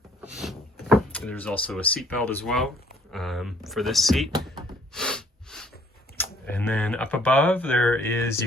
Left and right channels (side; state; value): both; normal; correlation 0.61